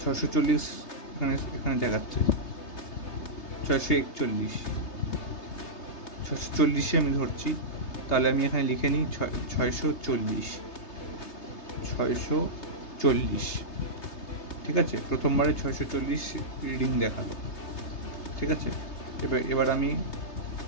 640 এখানে দেখাচ্ছে। 641, 640-এ আমি ধরছি, তাহলে আমি এখানে লিখে নিই 640। ঠিক আছে, প্রথমবারে 640 রিডিং দেখালো। ঠিক আছে, এবার আমি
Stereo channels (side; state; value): right; late; 3.3 ms